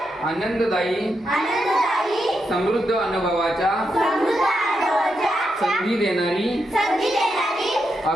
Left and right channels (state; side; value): normal; both; correlation 0.84